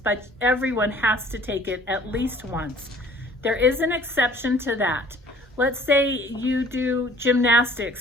but everyone has to take it at least once. There is an exception to that. Let's say you do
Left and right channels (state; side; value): normal; both; correlation 0.53